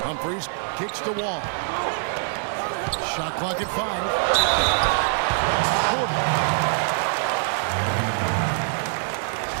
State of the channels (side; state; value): left; silent; 63 dB below the other